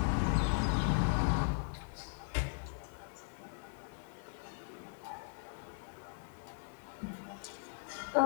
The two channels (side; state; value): right; silent; 52 dB below the other